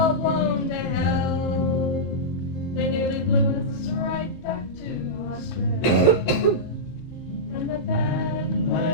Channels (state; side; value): late; right; 34 ms